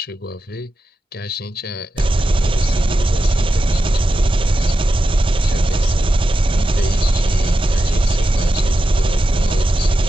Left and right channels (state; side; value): normal; both; correlation 0.90